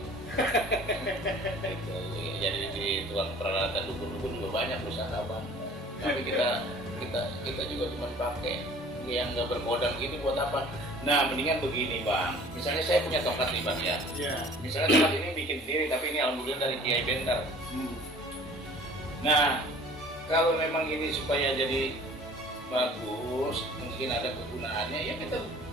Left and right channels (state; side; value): normal; both; correlation 0.49